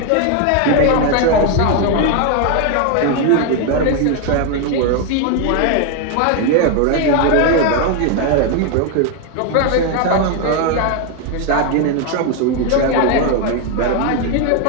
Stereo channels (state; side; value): different; both; correlation 0.01